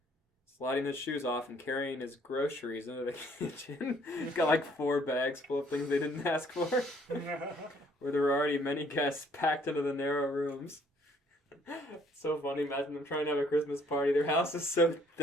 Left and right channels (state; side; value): normal; both; correlation 0.62